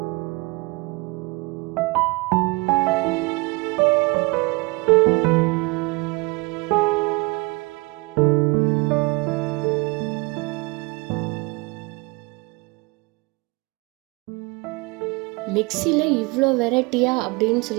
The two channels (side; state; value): left; quieter; 26.4 dB